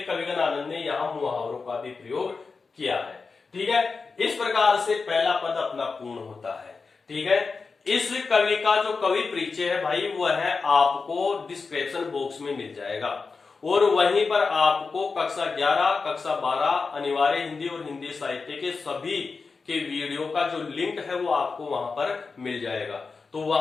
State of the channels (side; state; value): right; quieter; 4.5 dB